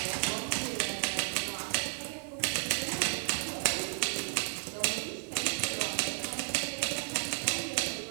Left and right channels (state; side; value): silent; left; 56 dB below the other